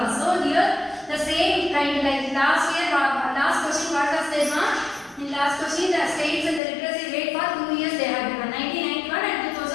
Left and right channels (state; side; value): drops out; right; at 6.6 s